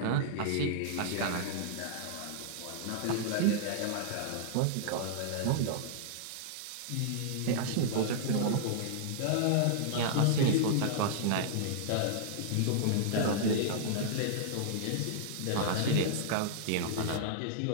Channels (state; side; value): different; both; correlation -0.01